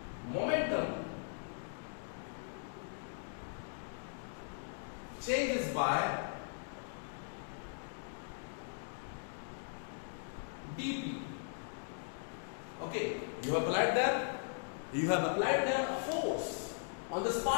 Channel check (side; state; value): right; silent; digital silence